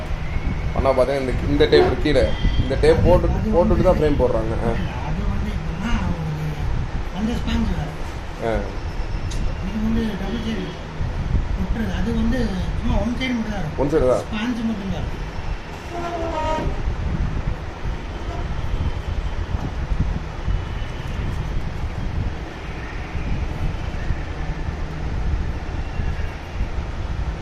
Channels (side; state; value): both; identical; correlation 1.00